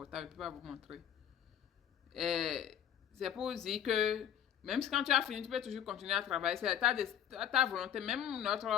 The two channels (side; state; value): right; quieter; 9.8 dB